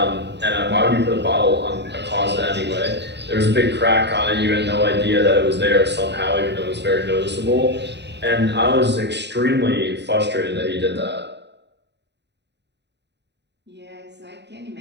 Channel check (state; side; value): late; left; 0.50 ms